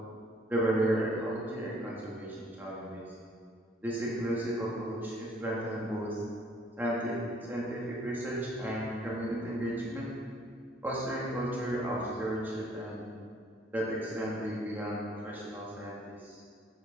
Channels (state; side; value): normal; both; correlation 0.61